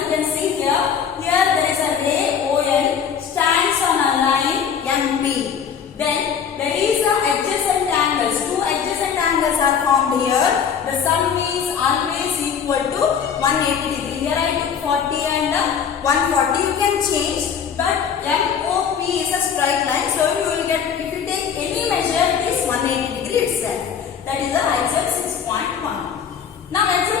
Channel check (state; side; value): quieter; right; 7.4 dB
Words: can see here. Here there is a ray OL stands on a line MP. Then there is a adjacent angles. Two adjacent angles are formed here. The sum is always equal to 180 degree. Here I took 40 and 140. You can change. But MOP is a straight line, so you will get, if you take any measure, it is 180 degree itself. That is the axiom 6.1. Now